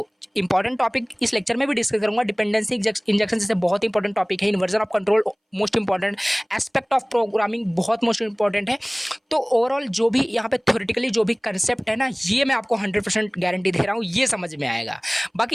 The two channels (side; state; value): both; identical; correlation 1.00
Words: इंपॉर्टेंट टॉपिक इस लेक्चर में भी डिस्कस करूंगा। डिपेंडेंसी इंजेक्शन जैसे बहुत इंपॉर्टेंट टॉपिक है। Inversion of control most important, aspect of programming बहुत मोस्ट इंपॉर्टेंट है। तो ओवरऑल जो भी यहाँ पे थ्योरेटिकली जो भी कंसेप्ट है ना, ये मैं आपको 100% गारंटी दे रहा हूँ, ये समझ में आएगा।